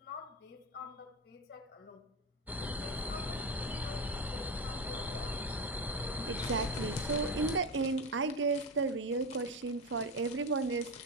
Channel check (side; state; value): both; normal; correlation 0.17